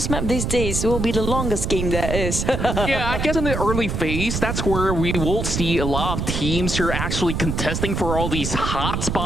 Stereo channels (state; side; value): noise; right; rumble, 2 dB below the sound